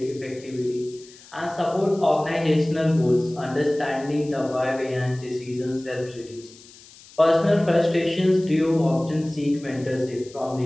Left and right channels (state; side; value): noise; left; hiss, 22 dB below the sound